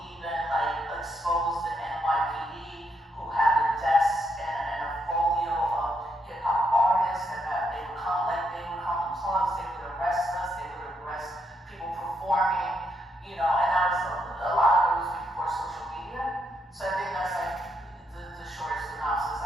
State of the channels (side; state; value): both; normal; correlation 0.78